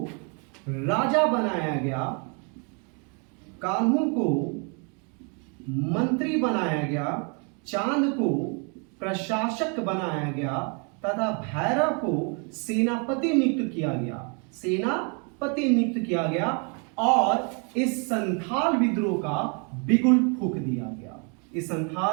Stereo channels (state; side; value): quieter; left; 36.4 dB